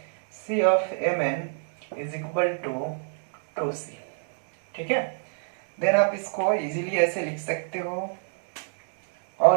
C of Mn is equal to 2C। ठीक है, देन आप इसको इजीली ऐसे लिख सकते हो,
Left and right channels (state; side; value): silent; left; digital silence